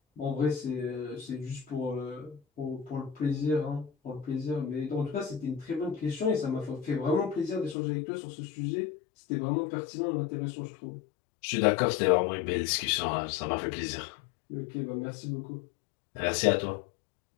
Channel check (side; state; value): right; drops out; at 7.8 s